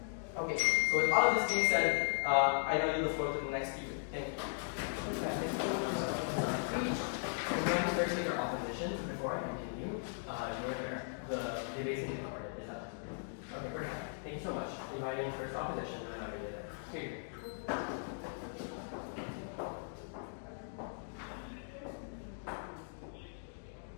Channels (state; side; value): silent; right; digital silence